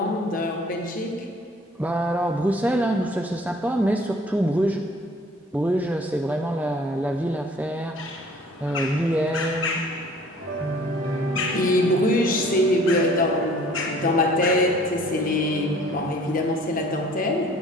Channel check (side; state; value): both; normal; correlation 0.52